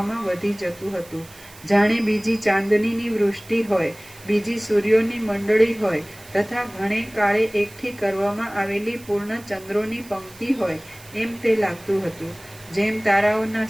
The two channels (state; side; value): noise; right; hiss, 21 dB below the sound